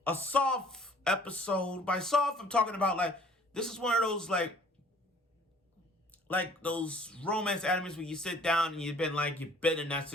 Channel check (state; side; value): normal; both; correlation 0.55